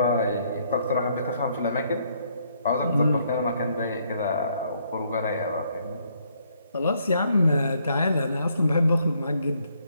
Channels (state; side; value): inverted; both; correlation -0.70